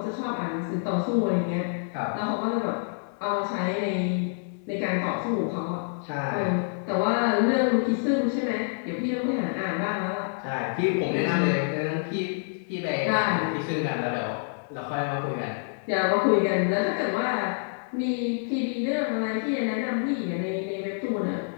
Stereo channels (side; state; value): right; silent; 60 dB below the other